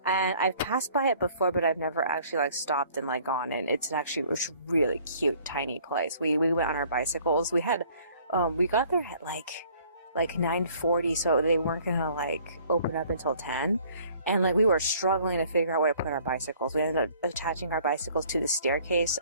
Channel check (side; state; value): both; inverted; correlation -0.57